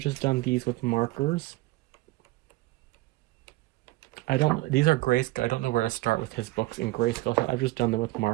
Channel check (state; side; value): quieter; left; 19.4 dB